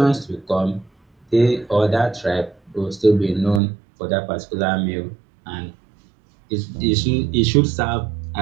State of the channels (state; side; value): drops out; left; at 3.6 s